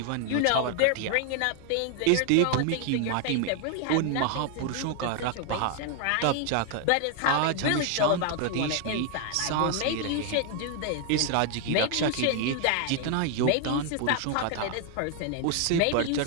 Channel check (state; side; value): different; both; correlation 0.00